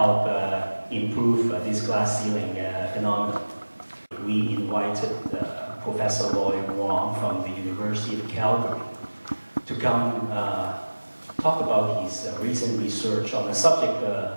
improve this glass ceiling phenomenon. We invited Professor Edmond Wong from the University of Calgary to come talk about his recent research on the subject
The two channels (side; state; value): both; inverted; correlation -1.00